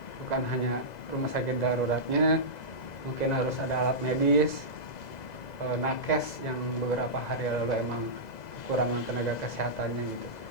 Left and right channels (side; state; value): right; late; 2.0 ms